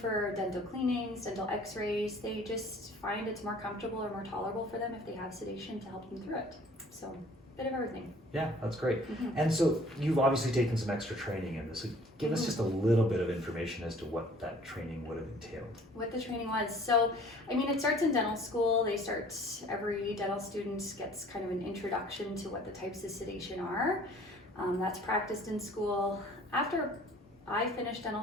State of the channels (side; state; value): both; normal; correlation 0.52